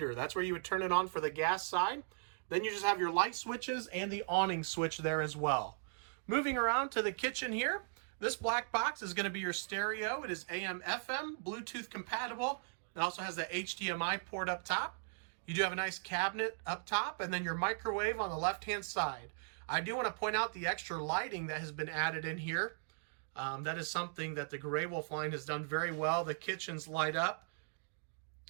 That's where you would turn it on for the gas side. Then you just have your light switches and the awning switch there as well. Moving around to the kitchen here, this black box is going to be your stereo. It is AM, FM, Bluetooth compatible. It also has the HDMI port up top. You do have a nice cabinet up top, and then your microwave on the left-hand side. I do want to point out the extra lighting that has been added in here. That is something that the Grey Wolf line has done very well. The kitchens light up.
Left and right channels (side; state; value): left; silent; digital silence